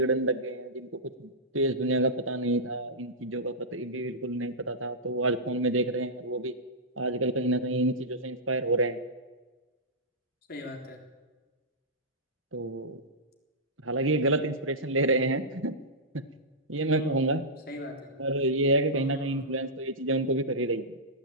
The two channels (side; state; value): both; normal; correlation -0.14